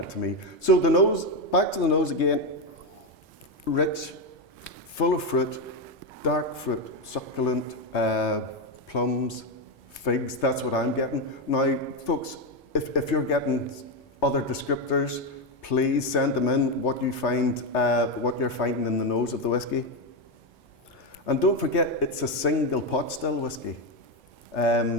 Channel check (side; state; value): both; normal; correlation 0.09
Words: me. So the nose, back to the nose again, rich, full of fruit, dark fruit, succulent, plums, figs, that's what I'm getting. Now, folks, if you're getting other descriptors, please send them in, what you find, what you're finding in the nose of the whiskey. And don't forget, it's a single pot still whiskey.